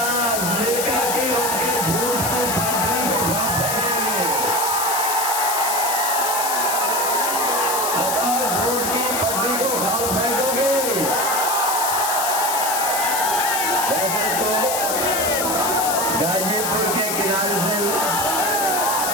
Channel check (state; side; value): noise; left; hiss, 1 dB below the sound